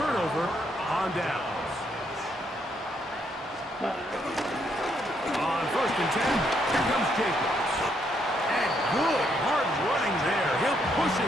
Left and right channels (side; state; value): both; normal; correlation 0.74